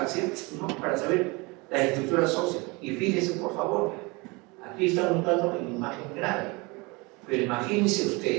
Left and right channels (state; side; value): quieter; left; 26.2 dB